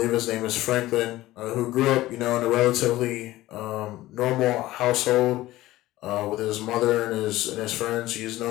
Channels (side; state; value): right; quieter; 16.7 dB